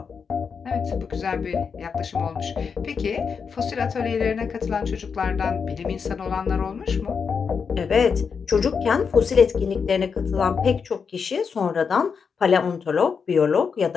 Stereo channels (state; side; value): quieter; right; 5.9 dB